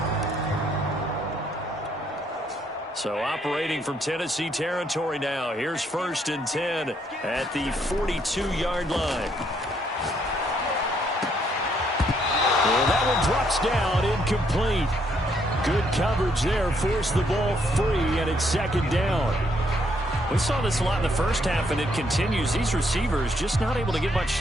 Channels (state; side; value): normal; both; correlation 0.71